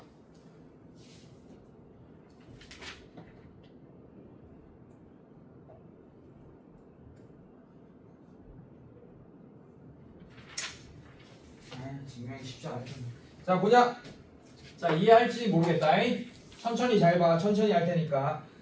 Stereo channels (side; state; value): both; identical; correlation 1.00